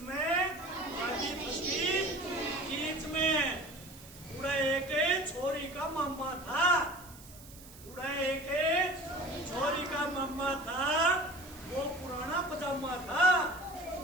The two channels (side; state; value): right; noise; hiss, 19 dB below the sound